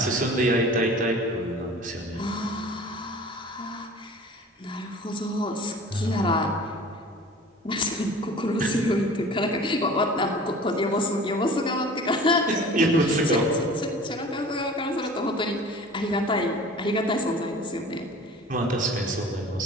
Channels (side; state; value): both; normal; correlation 0.43